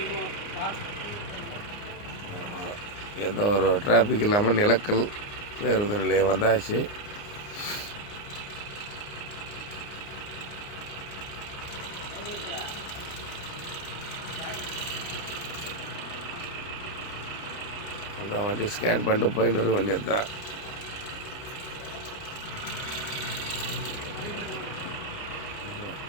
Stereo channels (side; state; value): right; late; 29 ms